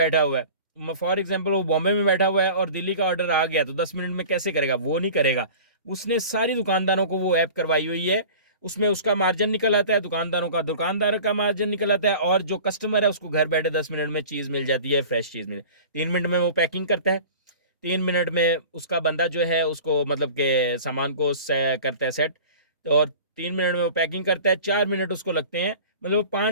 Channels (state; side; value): inverted; both; correlation -0.41